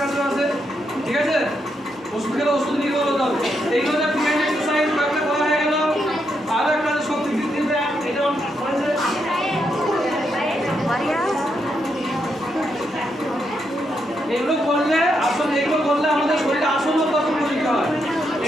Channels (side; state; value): both; normal; correlation 0.80